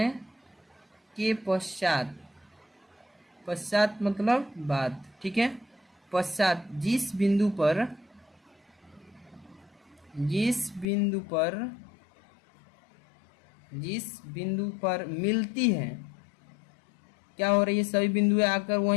के पश्चात मतलब बाद, ठीक है, पश्चात जिस बिंदु पर मिलती है, क्या हो रही है, सभी बिंदुएं आकर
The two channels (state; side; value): drops out; right; at 10.9 s